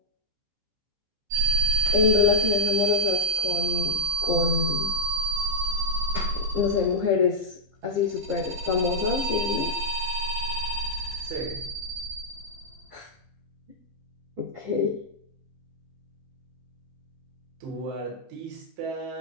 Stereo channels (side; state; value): left; late; 15 ms